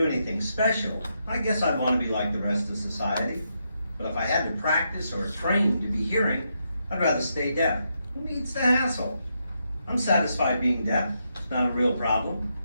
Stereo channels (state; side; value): inverted; both; correlation -0.81